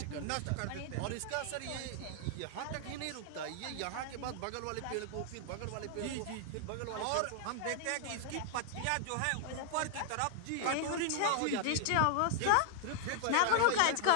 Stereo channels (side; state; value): both; different; correlation 0.00